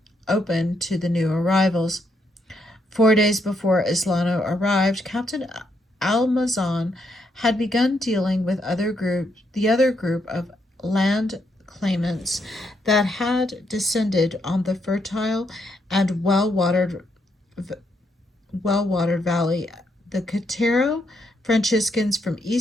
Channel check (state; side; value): normal; both; correlation 0.77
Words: open to the new arrivals. 4 days before Islano arrived, Captain Almazan had begun dealing with the other group of land claimants that had descended on the fertile and well-watered valley. The Cotero Franciscans from